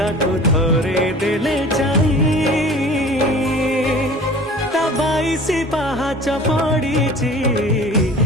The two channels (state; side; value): normal; both; correlation 0.43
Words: थरे देले चाही ता 22 पाहाच पड़ीची